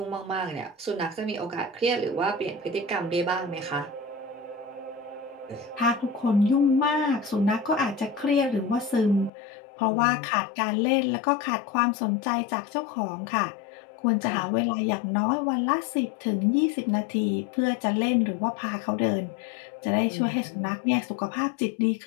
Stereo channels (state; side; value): drops out; right; at 9.3 s